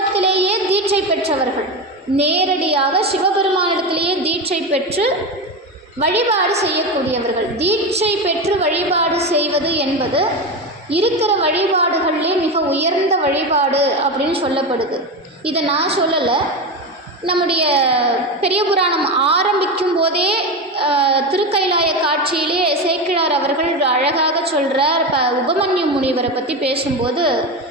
தீட்சை பெற்றவர்கள். நேரடியாக சிவபெருமானிடத்திலேயே தீட்சை பெற்று வழிபாடு செய்யக்கூடியவர்கள். தீட்சை பெற்று வழிபாடு செய்வது என்பது இருக்கிற வழிபாடுகளிலே மிக உயர்ந்த வழிபாடு அப்படின்னு சொல்லப்படுது. இதை நான் சொல்லலை, நம்முடைய பெரிய புராணம் ஆரம்பிக்கும் போதே திருக்கைலாய காட்சியிலே சேக்கிழார் அவர்கள் அழகாக சொல்கிறார். உபமன்யு முனிவரை பற்றி பேசும்போது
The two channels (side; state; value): both; normal; correlation 0.18